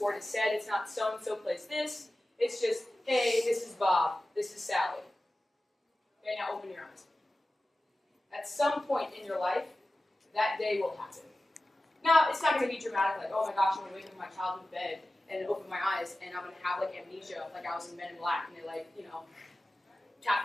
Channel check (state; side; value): normal; both; correlation 0.95